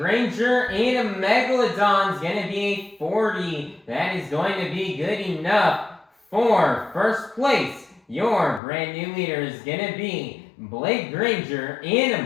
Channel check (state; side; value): drops out; right; at 8.6 s